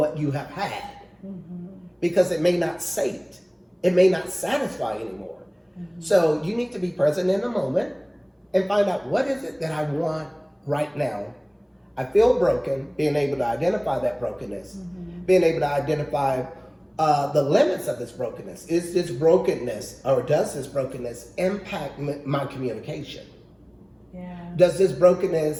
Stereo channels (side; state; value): both; identical; correlation 1.00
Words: you have had. Because it may not sate, it may not satisfy anymore. So you need to be present in the moment and find out, what is it that I want right now? I feel broken, being able to identify that brokenness, being able to identify the limits of this brokenness. Is this brokenness, or does this brokenness impact my communication? Yeah. Does this